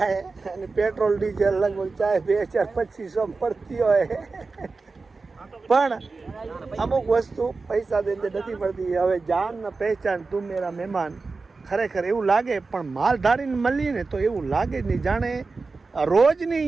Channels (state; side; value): quieter; left; 4.0 dB